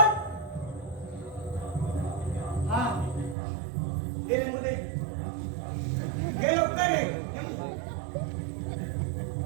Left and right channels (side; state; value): left; drops out; at 3.4 s